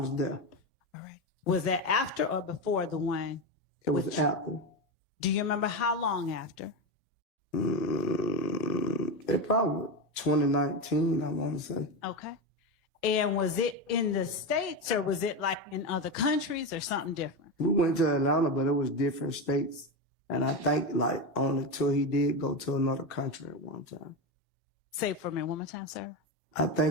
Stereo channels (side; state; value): both; normal; correlation 0.15